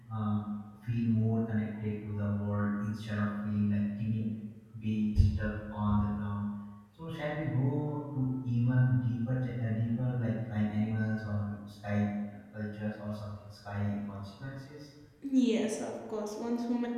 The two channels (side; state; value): both; identical; correlation 1.00